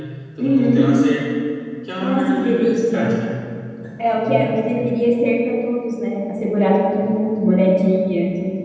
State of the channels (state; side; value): identical; both; correlation 1.00